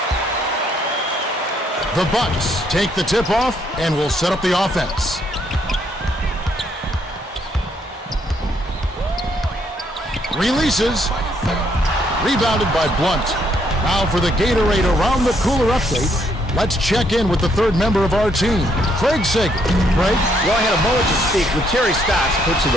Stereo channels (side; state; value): both; normal; correlation 0.71